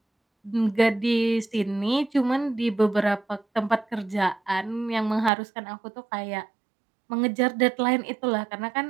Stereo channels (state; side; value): drops out; left; at 5.3 s